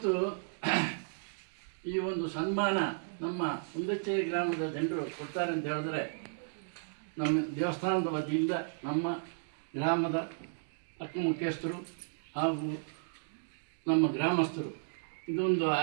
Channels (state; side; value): silent; left; digital silence